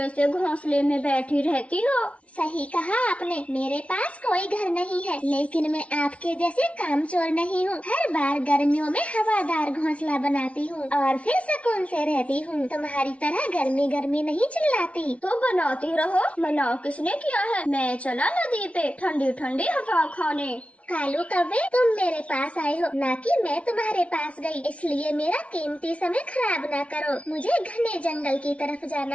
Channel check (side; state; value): right; late; 0.063 ms